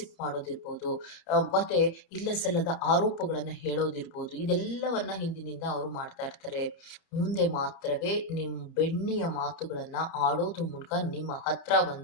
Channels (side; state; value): right; late; 31 ms